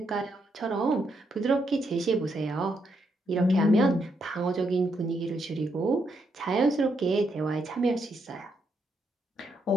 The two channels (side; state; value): both; normal; correlation 0.78